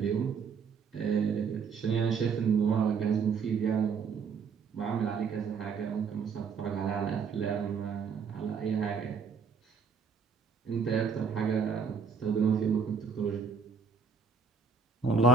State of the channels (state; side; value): quieter; left; 5.5 dB